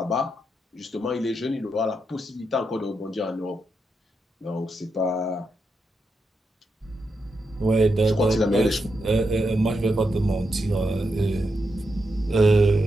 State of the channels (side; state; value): both; normal; correlation 0.85